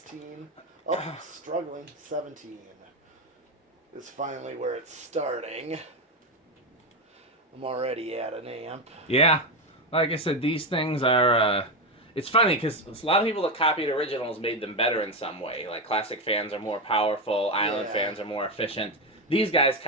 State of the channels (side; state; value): both; normal; correlation 0.11